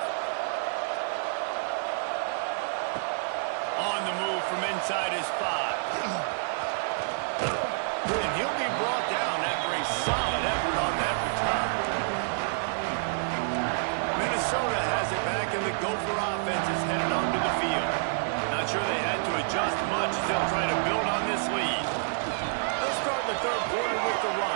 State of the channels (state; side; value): silent; left; digital silence